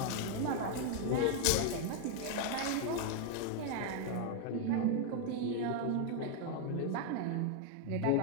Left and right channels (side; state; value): both; different; correlation 0.00